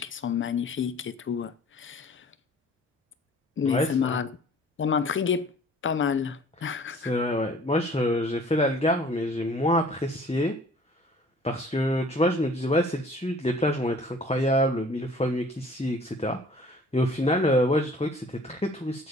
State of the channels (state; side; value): normal; both; correlation 0.51